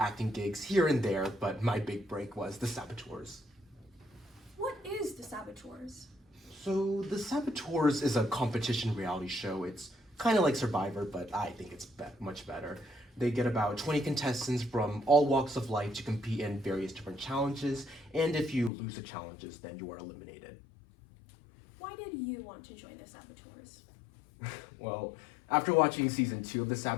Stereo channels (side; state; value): right; drops out; at 18.7 s